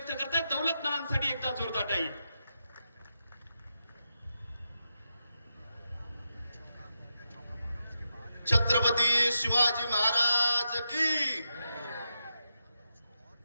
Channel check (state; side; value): inverted; both; correlation -0.86